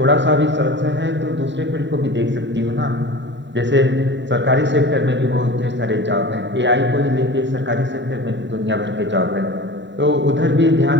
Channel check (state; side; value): late; left; 0.52 ms